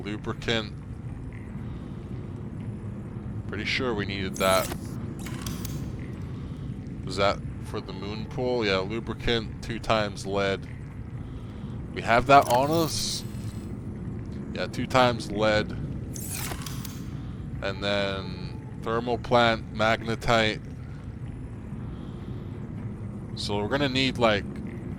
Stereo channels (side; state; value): both; identical; correlation 1.00